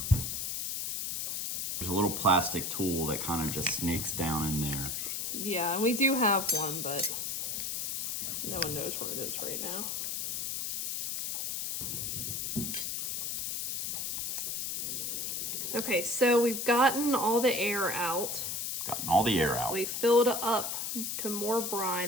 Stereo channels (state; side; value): noise; left; hiss, 2 dB below the sound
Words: There's a little plastic tool that kind of just snakes down in there. Yeah, and we do have one, but no one knows where it is right now. Okay, so we've gotten all the air out. Gotten all the air out. We filled up to more